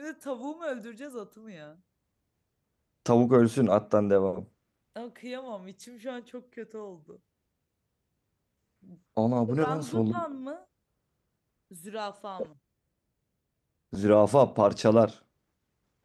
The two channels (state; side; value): identical; both; correlation 1.00